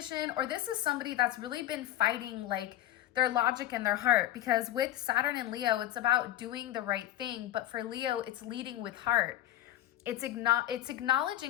or this is somebody that's really been fighting like their logic and their heart, because with Saturn and Leo, it's about doing the right thing. But for Leo, it's leading with heart. It's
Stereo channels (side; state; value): right; quieter; 13.8 dB